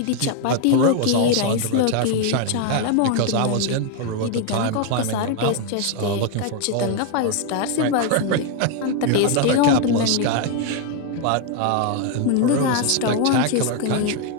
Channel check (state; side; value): different; both; correlation 0.01